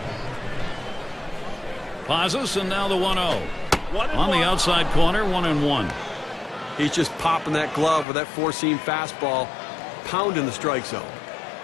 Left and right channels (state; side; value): drops out; right; at 8.1 s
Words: Pazos, and now the 1-0. On the outside corner, 1-1. He's just popping that glove with that four-seam fastball, pounding the strike zone.